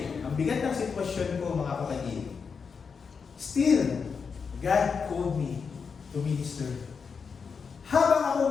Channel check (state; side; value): quieter; right; 5.7 dB